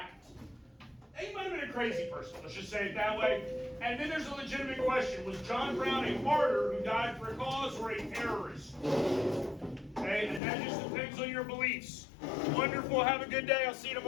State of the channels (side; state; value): right; drops out; at 10.4 s